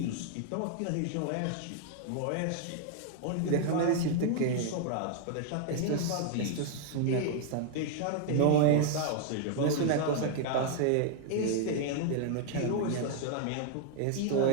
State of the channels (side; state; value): both; different; correlation 0.00